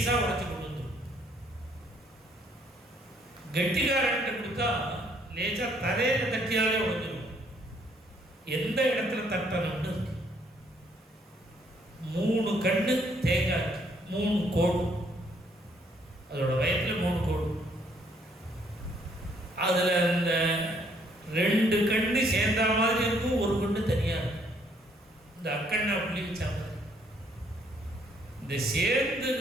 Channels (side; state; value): both; normal; correlation 0.67